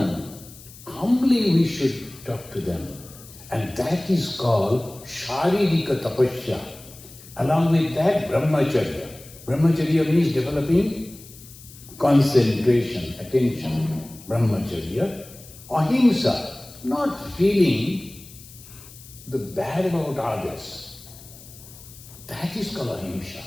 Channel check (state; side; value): noise; left; hiss, 19 dB below the sound